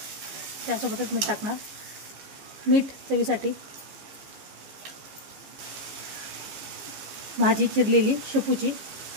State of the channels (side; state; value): left; late; 14 ms